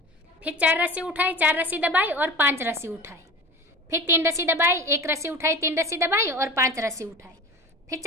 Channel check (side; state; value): both; normal; correlation 0.34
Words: फिर 4 रस्सी उठाई, 4 रस्सी दबाई और 5 रस्सी उठाई, फिर 3 रस्सी दबाई, 1 रस्सी उठाई, 3 रस्सी दबाई और 5 रस्सी उठाई, फिर